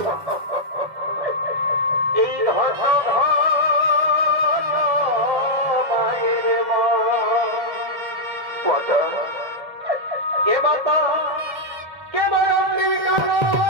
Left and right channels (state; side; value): late; left; 2.1 ms